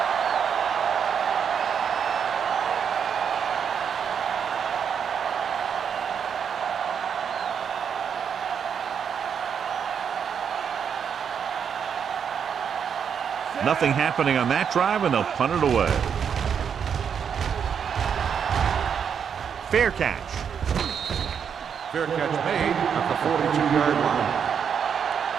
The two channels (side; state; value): left; quieter; 7.4 dB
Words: Nothing happening on that drive, and they'll punt it away. Fair catch. Fair catch made at the 42-yard line.